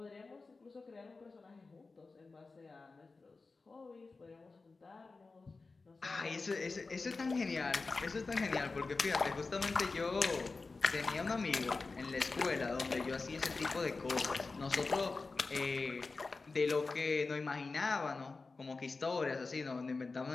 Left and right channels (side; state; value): right; quieter; 3.9 dB